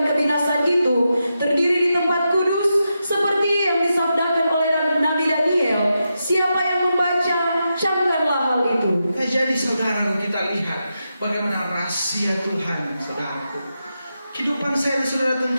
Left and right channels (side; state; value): both; inverted; correlation -0.87